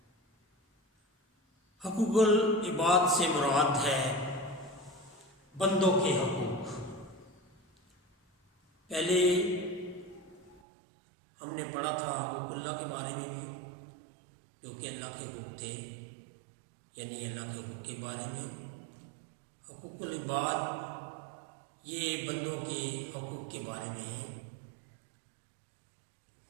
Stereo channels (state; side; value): drops out; left; at 10.6 s